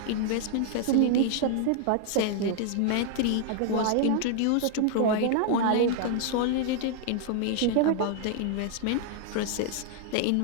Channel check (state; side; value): different; both; correlation 0.00